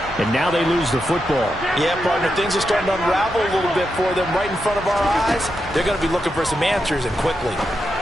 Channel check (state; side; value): normal; both; correlation 0.86